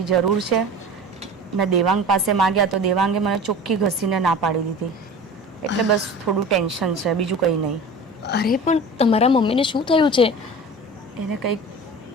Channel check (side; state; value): both; normal; correlation 0.36